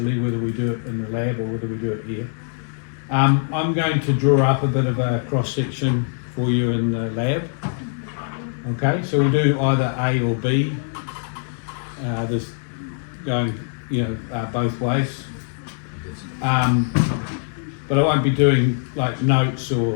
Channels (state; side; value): silent; right; digital silence